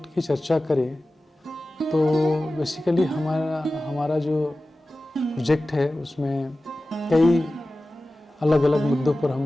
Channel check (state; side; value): normal; both; correlation 0.96